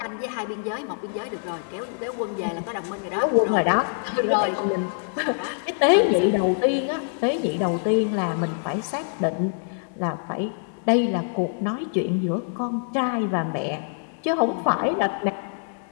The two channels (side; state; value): right; silent; digital silence